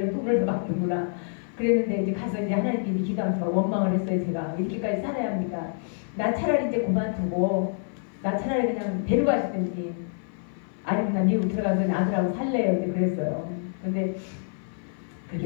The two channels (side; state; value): right; silent; 55 dB below the other